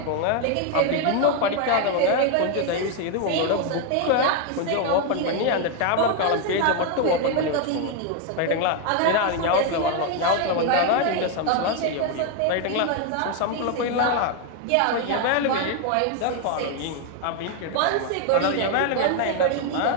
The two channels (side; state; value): both; different; correlation 0.01